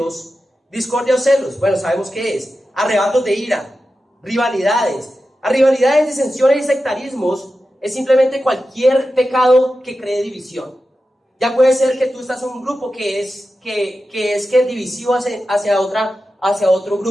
Discordia o celos, sabemos qué es. Arrebatos de ira, rivalidades. A rivalidades, disensiones y sectarismos es simplemente cualquier pecado que cree división. Ya puede ser que tú estás en un grupo que es divisivo hacia otro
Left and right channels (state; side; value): normal; both; correlation 0.92